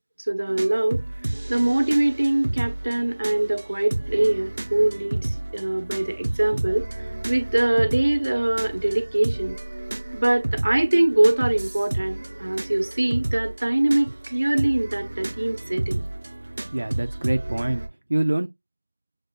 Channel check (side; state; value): both; inverted; correlation -1.00